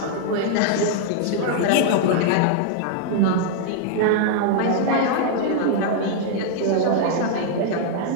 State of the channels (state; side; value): different; both; correlation 0.00